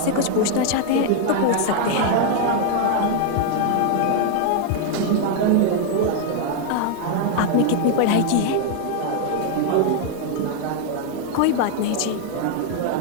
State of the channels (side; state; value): both; different; correlation 0.00